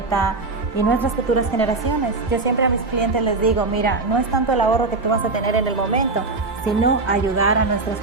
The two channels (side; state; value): left; quieter; 3.6 dB